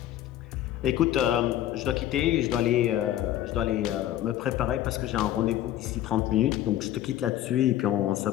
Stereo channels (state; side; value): quieter; right; 12.6 dB